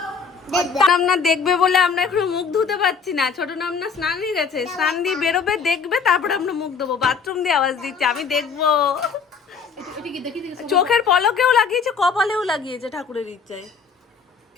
নামনা দেখবে বলে আমরা এখন মুখ ধুতে পারছি না। ছোট নামনা স্নান দিয়ে গেছে, স্নান দিয়ে বেরোবে, দেখবে, তারপরে আমরা মুখ ধোবো। বাথরুম দিয়ে আওয়াজ দিচ্ছে, আমি দেখবো। চোখের পলকেও লাগিয়েছে, কপালেও লাগিয়েছে, ঠাকুরের ইচ্ছায়।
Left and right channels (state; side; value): quieter; right; 5.7 dB